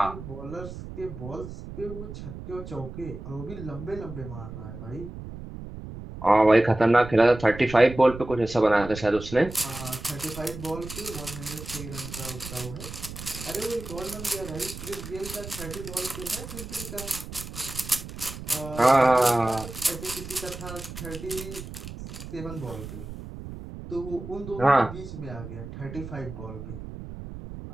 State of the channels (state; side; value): noise; right; rumble, 11 dB below the sound